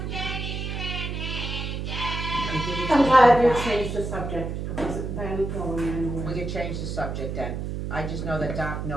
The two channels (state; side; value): noise; right; hum, 4 dB below the sound